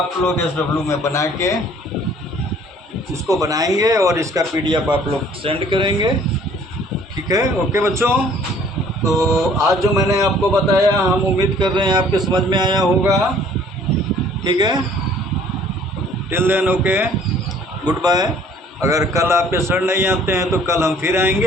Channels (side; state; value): both; normal; correlation 0.56